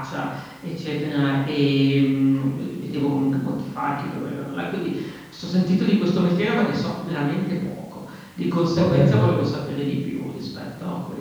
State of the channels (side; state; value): both; identical; correlation 1.00